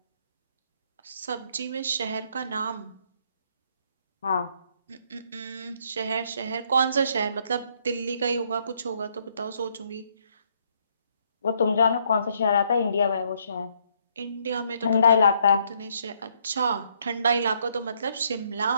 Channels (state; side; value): inverted; both; correlation -0.69